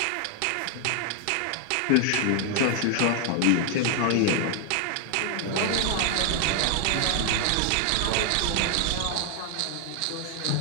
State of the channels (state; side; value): different; both; correlation 0.00